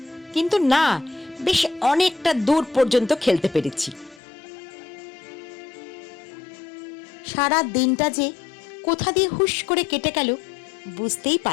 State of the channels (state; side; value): drops out; right; at 4.2 s